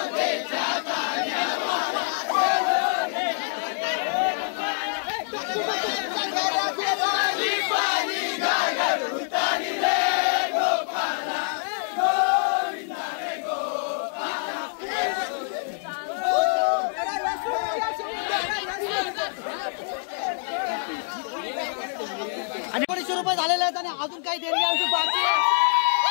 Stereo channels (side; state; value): right; silent; 61 dB below the other